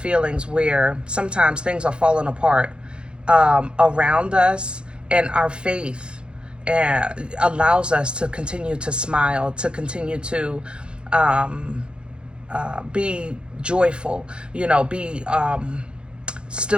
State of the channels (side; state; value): left; late; 0.054 ms